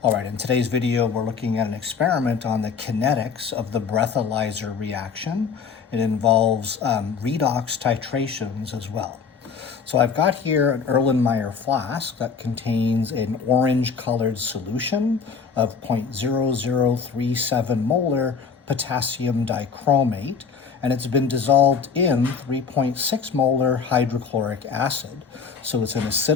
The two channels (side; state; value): right; quieter; 5.8 dB